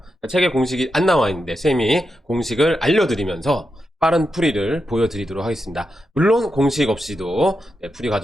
책에 공식이 안 나와 있는데 쌤이 공식을 알려드리면서 빠른 풀이를 보여드리도록 하겠습니다. 물론 공식 없이도 풀이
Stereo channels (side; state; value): both; normal; correlation 0.87